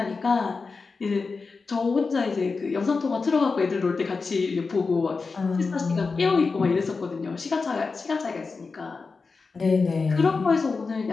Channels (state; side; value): quieter; right; 4.4 dB